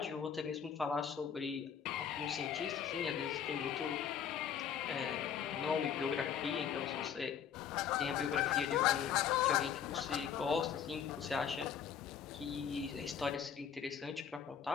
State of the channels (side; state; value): right; quieter; 8.2 dB